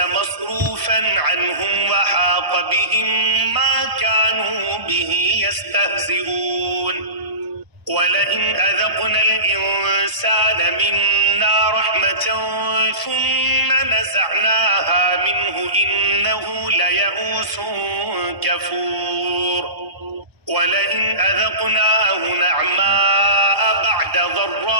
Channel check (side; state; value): left; late; 1.0 ms